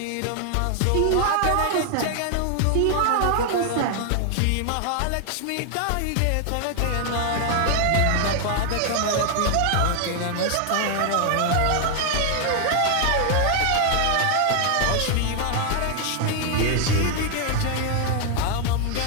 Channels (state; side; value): different; both; correlation 0.00